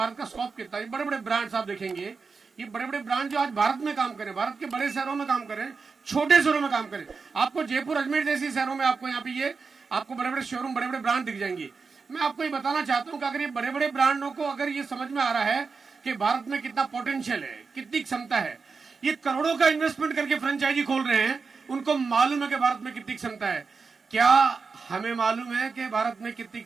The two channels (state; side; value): quieter; left; 4.8 dB